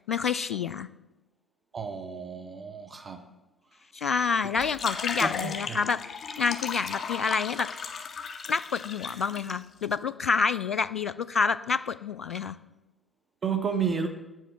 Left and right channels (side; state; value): right; quieter; 3.7 dB